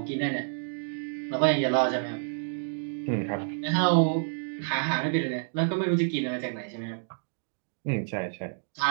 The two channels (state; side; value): silent; left; digital silence